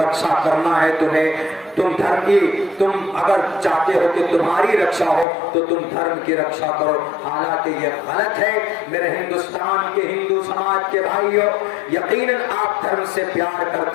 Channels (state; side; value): drops out; right; at 5.2 s